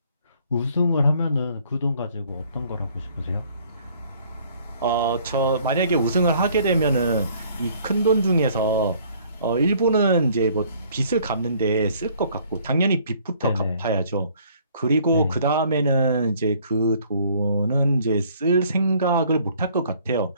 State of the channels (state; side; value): inverted; both; correlation -0.59